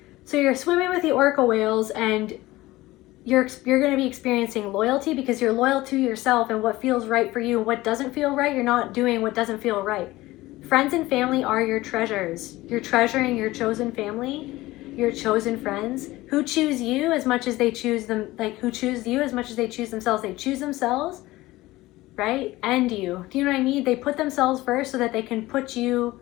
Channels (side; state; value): right; quieter; 18.3 dB